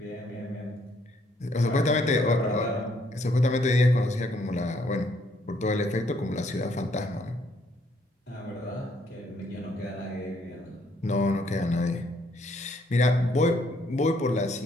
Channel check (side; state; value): both; normal; correlation 0.68